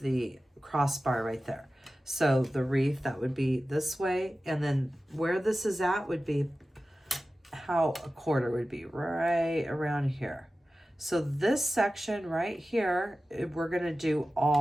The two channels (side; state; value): both; normal; correlation 0.95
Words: crossbar right there. So the wreath, that would be this way. And then where this is at would be how a quarter would be, right around here. So this section right here, we're going to do